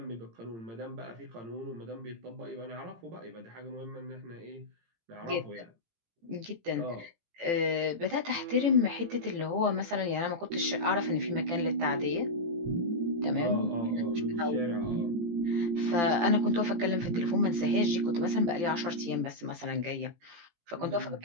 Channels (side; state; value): left; late; 18 ms